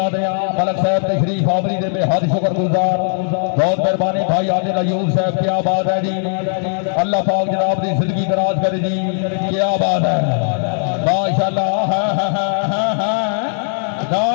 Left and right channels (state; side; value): silent; right; 68 dB below the other